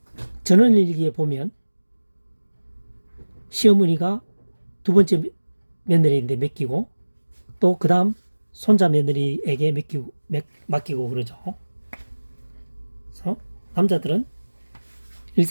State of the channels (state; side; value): inverted; both; correlation -1.00